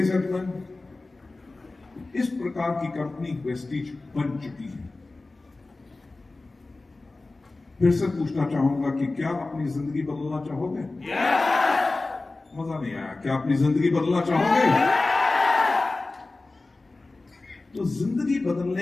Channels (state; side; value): quieter; right; 3.3 dB